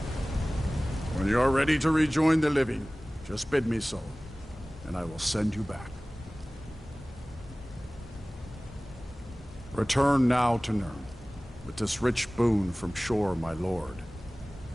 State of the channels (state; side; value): normal; both; correlation 0.98